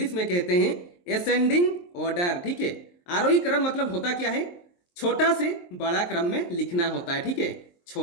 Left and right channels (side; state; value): right; late; 23 ms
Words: में कहते हैं एसेंडिंग ऑर्डर। ठीक है, आरोही क्रम मतलब होता क्या है, छोटा से बड़ा क्रम में लिखना होता है। ठीक है,